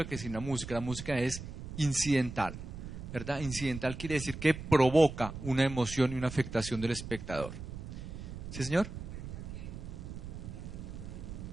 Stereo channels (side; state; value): right; noise; rumble, 9 dB below the sound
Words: que sin la música. La música es incidental, ¿verdad? Incidental quiere decir que provoca una emoción y una afectación del espectador. ¿Sí, señor?